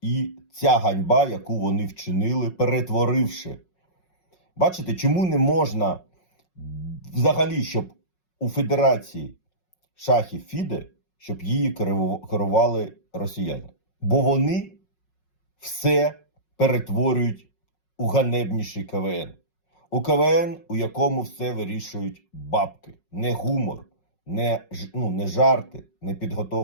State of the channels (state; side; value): late; right; 5.5 ms